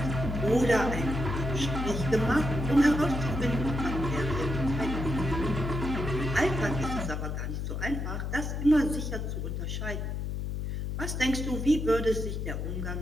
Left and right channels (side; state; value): left; noise; hum, 3 dB below the sound